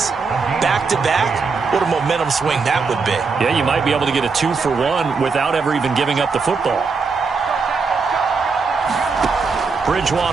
back-to-back. What a momentum swing that would be. Yeah, you might be able to get a 2-for-1 without ever even giving up the football.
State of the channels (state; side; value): quieter; left; 4.8 dB